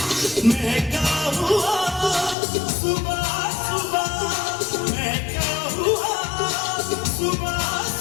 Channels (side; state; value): right; drops out; at 2.4 s